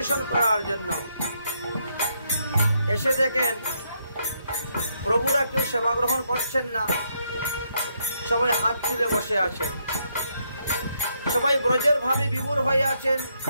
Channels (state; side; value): inverted; both; correlation -0.76